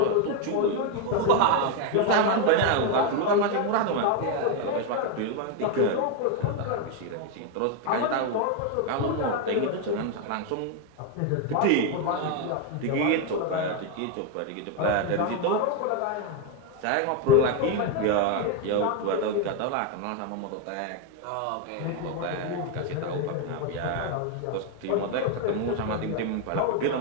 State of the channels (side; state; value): both; different; correlation 0.01